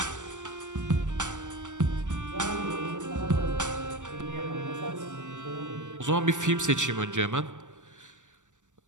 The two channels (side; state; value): left; late; 0.85 ms